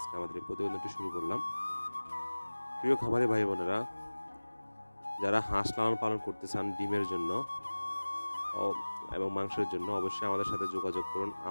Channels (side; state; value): both; inverted; correlation -1.00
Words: আমাদের এই প্রতিবেদনটি শুরু করলাম। প্রিয় খামারি ভাই বোনেরা, যারা হাঁস লালন পালন করতে চান ডিমের জন্য এবং মাংসের জন্য অবশ্যই আমাদের সাথে যোগাযোগ করুন।